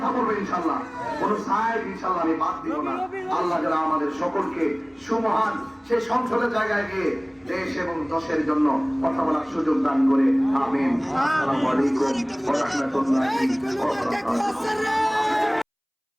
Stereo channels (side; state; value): both; identical; correlation 1.00